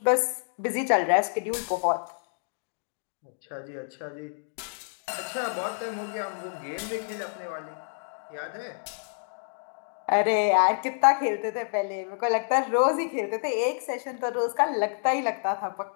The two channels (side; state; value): right; silent; digital silence